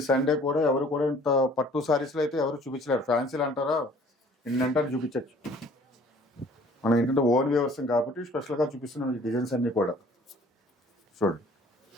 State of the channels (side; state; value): both; normal; correlation 0.53